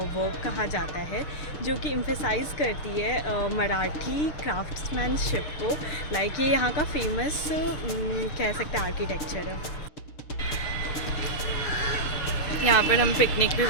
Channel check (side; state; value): right; late; 6.7 ms